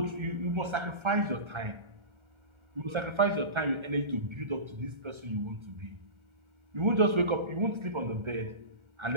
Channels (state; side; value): late; left; 1.3 ms